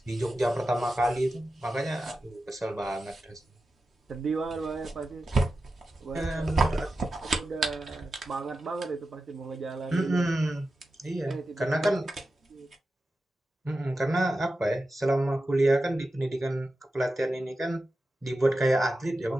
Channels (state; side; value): normal; both; correlation 0.92